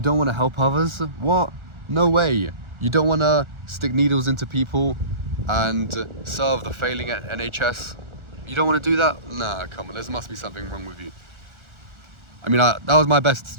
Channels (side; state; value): left; late; 1.4 ms